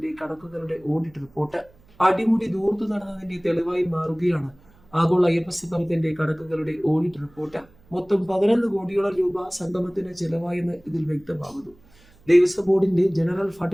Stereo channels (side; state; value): right; noise; hum, 29 dB below the sound